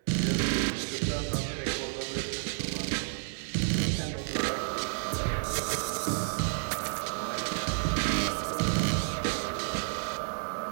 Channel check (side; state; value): left; silent; digital silence